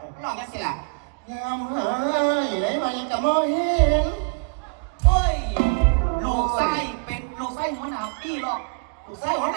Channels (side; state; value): left; quieter; 36.2 dB